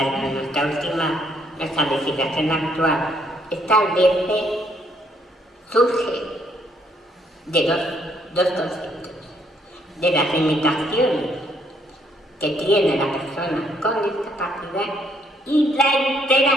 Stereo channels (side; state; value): both; normal; correlation 0.69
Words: nuestra legislación actual establece, surge de dos conceptos, de las limitaciones que tiene la persona con discapacidad y la